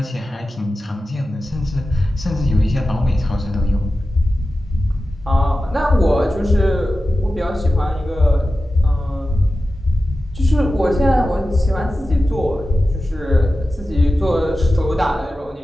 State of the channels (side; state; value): both; normal; correlation 0.94